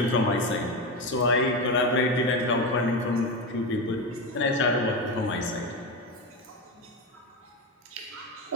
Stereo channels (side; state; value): both; normal; correlation 0.17